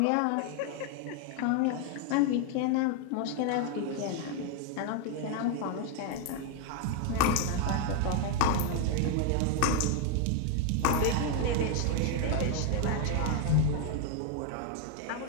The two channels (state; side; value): different; both; correlation 0.01